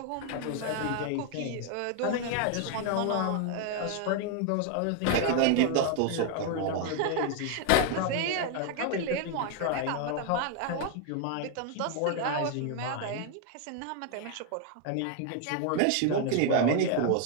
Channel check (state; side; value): different; both; correlation 0.00